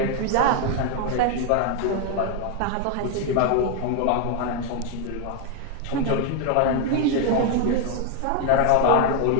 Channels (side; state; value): both; different; correlation 0.01